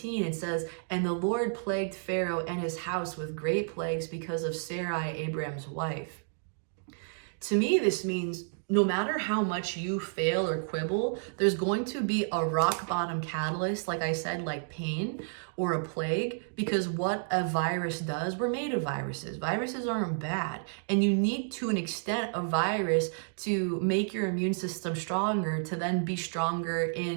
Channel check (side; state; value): left; silent; digital silence